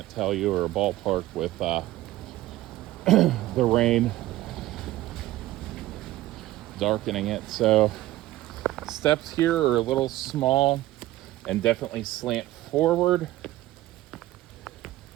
tell you, or a ballpark with the rain darkening it. So steps here are a little small and definitely slant forward.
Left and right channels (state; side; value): quieter; left; 16.0 dB